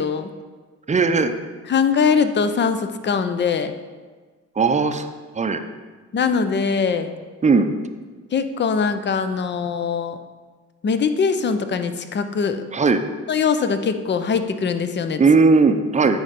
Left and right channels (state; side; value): normal; both; correlation 0.34